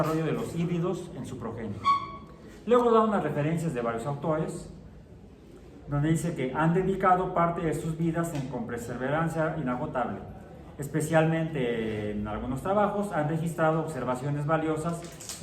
de los híbridos en su progenie. Luego da unas referencias de varios autores, donde dice que han dedicado parte de sus vidas con perseverancia inagotable. Especialmente en algunos trabajos han registrado observaciones valiosas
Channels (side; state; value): both; identical; correlation 1.00